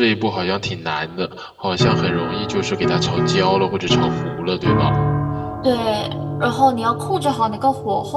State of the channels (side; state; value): both; identical; correlation 1.00